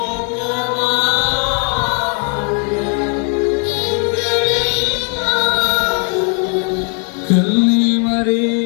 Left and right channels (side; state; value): right; quieter; 39.8 dB